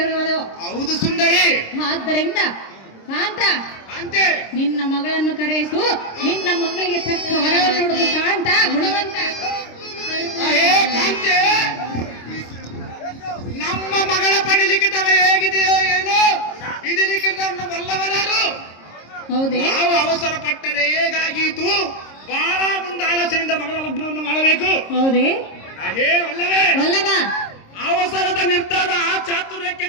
ಇರುವುದು. ಹೌದು ಸುಂದರಿ. ಆದ್ದರಿಂದ ಕಾಂತ, ಕಾಂತೆ, ನಿನ್ನ ಮಗಳನ್ನು ಕರೆಯಿಸು, ನಿನ್ನ ಮಗಳಿಗೆ ತಕ್ಕ ವರವನ್ನು ನೋಡುವುದು. ಕಾಂತ ಗುಣವಂತ. ಹೇ ಕಾಂತೆ, ನಮ್ಮ ಮಗಳ ಪಡಿಲಿಕ್ಕಿತವ ಹೇಗಿದೆಯೋ ಏನೋ, ಇದು ಲಿಖಿತವನ್ನು ಬಲ್ಲವರಾರು. ಹೌದೇ? ನಾವು ಅವಸರ ಪಟ್ಟರೆ ಹೇಗಾಗೀತು? ಬಹಳ ಮುಂದೆ ಆಲೋಚನೆಯಿಂದ ಮಗಳ ಲಗ್ನವನ್ನು ಮಾಡಬೇಕು. ಹೌದೇ? ಹೇ ಅಲ್ಲವೇ? ವಲ್ಲಭ, ಅವಸರದ ನಿರ್ಧಾರ ಚಾತುರ್ಯಕ್ಕೆ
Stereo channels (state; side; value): late; right; 26 ms